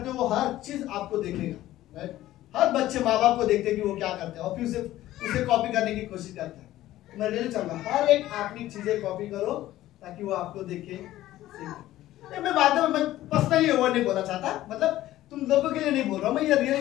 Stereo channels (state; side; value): quieter; right; 14.8 dB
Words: हो वो हर चीज आपको देखेगा, राइट? हर बच्चे माँ बाप को देखते हैं कि वो क्या करते हैं और फिर उसे कॉपी करने की कोशिश करते हैं। मैं रियली चाहूंगा हर एक अपनी चीजें कॉपी करो ताकि वो आपको देखे। मैं बाद में मैं पर्सनली वर्ड नहीं बोलना चाहता, मतलब तुम लोगों के लिए नहीं बोल रहा हूँ मैं, ये